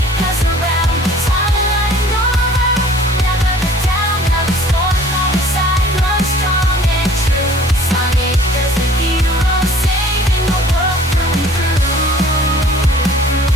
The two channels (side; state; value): both; normal; correlation 0.51